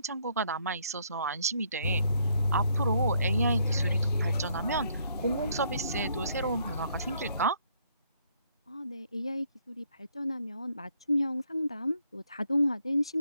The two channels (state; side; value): inverted; both; correlation -0.69